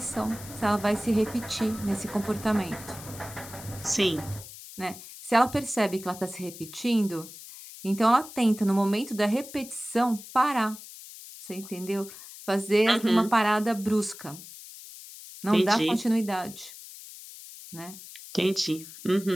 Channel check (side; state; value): left; noise; hiss, 15 dB below the sound